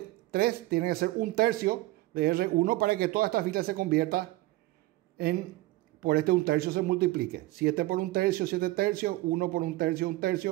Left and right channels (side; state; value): left; quieter; 18.5 dB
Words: 3 tiene que ser 1/3 de R1 para que toda esta fila se convierta en, por este 1/3 se multiplique. 7 por 1/3, 7/3, 1 por 1/3,